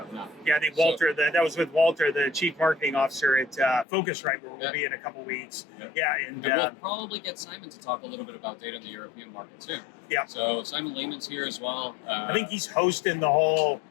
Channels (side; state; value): right; drops out; at 3.9 s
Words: now. Yeah, I think Walter, that was with Walter, the chief marketing officer at Focusrite, where we'll be in a couple weeks. And we'll probably get Simon to talk a little bit about data in the European market too. So Simon Lehman's here as well. I think he's hosting the whole.